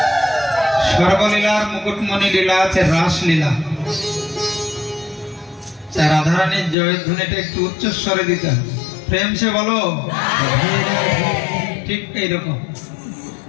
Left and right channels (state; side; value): drops out; right; at 6.8 s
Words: সর্বলীলার মুকুটমণি লীলা আছে রাসলীলা। রাধারানীর জয়ধ্বনিটা একটু উচ্চস্বরে দিতে হবে, প্রেম সে বলো, ঠিক এইরকম।